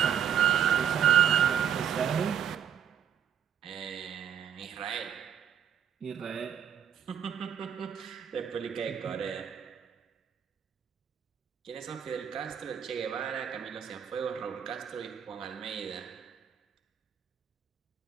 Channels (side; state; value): left; quieter; 8.7 dB